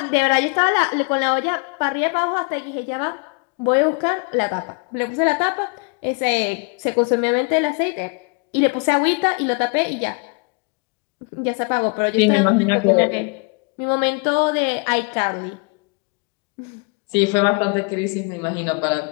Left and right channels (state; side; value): quieter; right; 33.9 dB